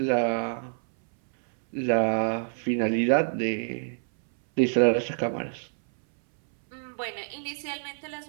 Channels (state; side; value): silent; left; 60 dB below the other